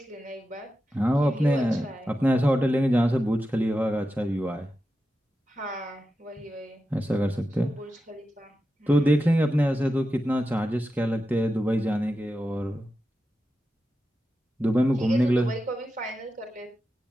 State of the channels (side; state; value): both; normal; correlation 0.90